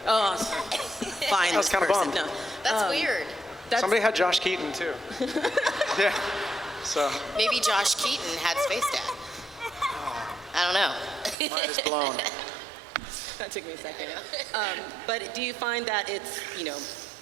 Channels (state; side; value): drops out; left; at 11.4 s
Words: Oh, fine. I was kinda person. bummed. No. That's weird. That's, Somebody had Josh Keaton too. Yeah. So Maybe Josh Keaton had Space Dad. I don't know. Mine is blown. That took me a second. But do you find that it's,